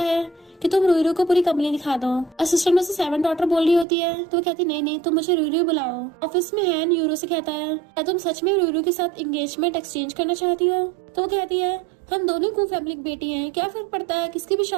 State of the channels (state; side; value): drops out; left; at 3.9 s